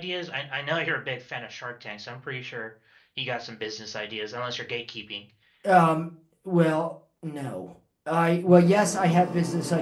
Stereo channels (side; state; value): both; identical; correlation 1.00